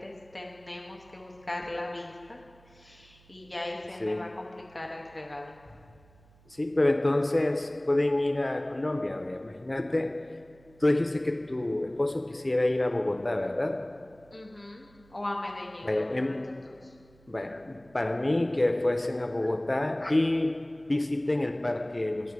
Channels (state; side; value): noise; right; hum, 28 dB below the sound